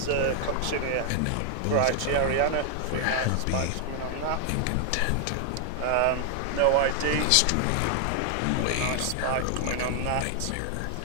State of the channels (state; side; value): different; both; correlation 0.00